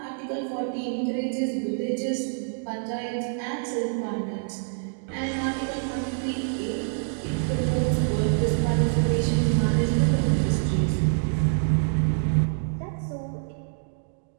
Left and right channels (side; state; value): left; silent; digital silence